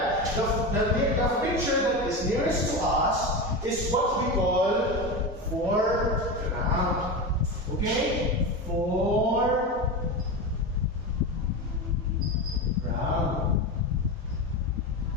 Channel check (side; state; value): both; normal; correlation 0.21